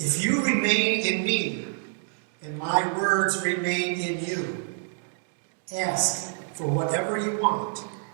you remain in me, and my words remain in you, ask for whatever you want,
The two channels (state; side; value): silent; left; digital silence